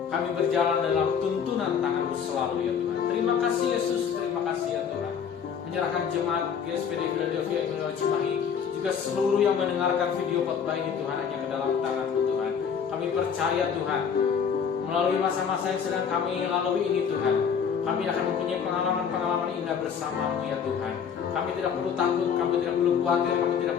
kami berjalan dalam tuntunan tangan-Mu selalu ya Tuhan. Terima kasih Yesus, terima kasih ya Tuhan. Menyerahkan jemaat GSPD Philadelphia Immanuel Cimahi, juga seluruh yang mendengarkan video khotbah ini Tuhan, hanya ke dalam tangan-Mu Tuhan. Kami percaya Tuhan, melalui masa-masa yang sedang kami lalui ini Tuhan, kami akan mempunyai pengalaman-pengalaman indah bersama-Mu ya Tuhan. Kami tidak perlu takut, kami tidak perlu khawatir, kami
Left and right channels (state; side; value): quieter; right; 7.1 dB